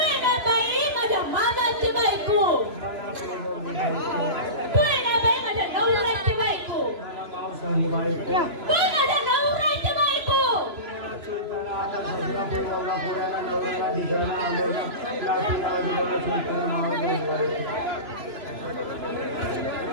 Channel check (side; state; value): left; late; 3.0 ms